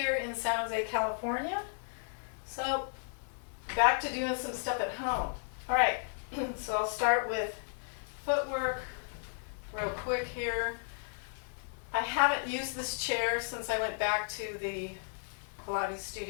in San Jose, California. So, back to doing some stuff at home. Alright, so I'll start with footwork real quick here. I haven't used this chair since I went back to the Pilates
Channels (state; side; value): silent; right; 55 dB below the other